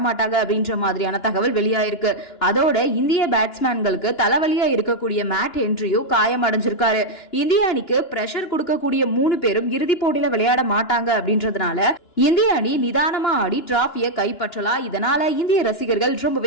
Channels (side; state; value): right; late; 2.9 ms